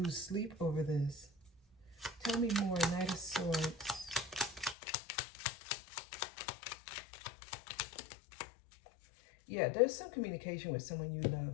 sleep over this. Tell me more, Knight of Swords. Yeah, there's some communication with someone you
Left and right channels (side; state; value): right; drops out; at 4.8 s